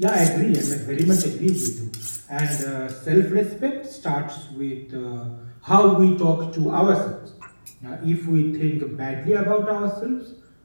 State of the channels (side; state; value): both; inverted; correlation -1.00